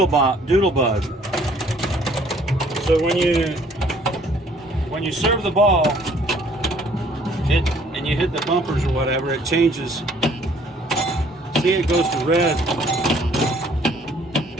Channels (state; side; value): normal; both; correlation 0.60